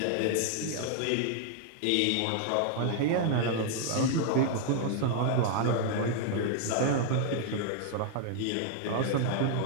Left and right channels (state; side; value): different; both; correlation 0.00